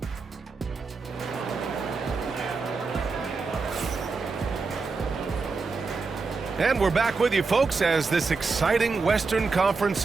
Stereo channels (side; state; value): left; quieter; 4.4 dB